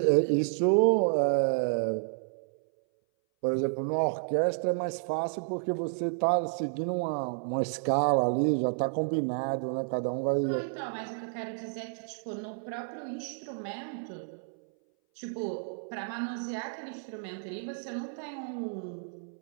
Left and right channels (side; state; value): left; silent; 57 dB below the other